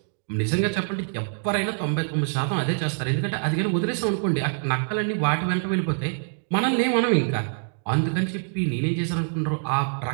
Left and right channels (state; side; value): silent; left; 62 dB below the other